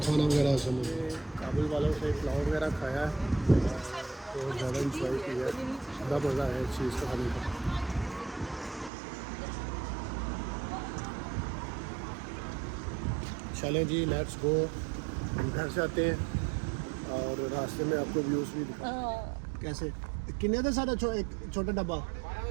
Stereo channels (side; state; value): left; drops out; at 8.9 s